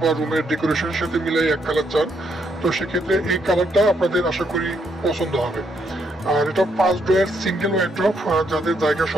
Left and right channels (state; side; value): normal; both; correlation 0.75